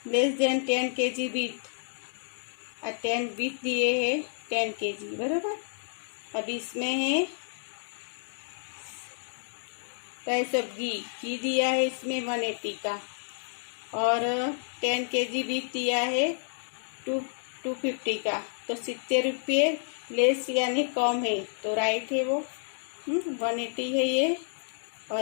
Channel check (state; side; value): silent; right; digital silence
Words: less then 10 kg with, 10 with दिए है 10 kg, बराबर। अब इसमें है प्राइस ऑफ घी दिया है इसमें 180 का और 10 kg विथ दिया है 250 का, तो 70 रुपये लेस यानी कम है, तो राइट है वो। 180 है ये